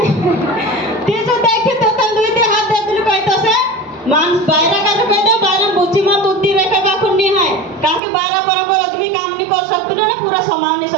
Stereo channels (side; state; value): left; drops out; at 8.0 s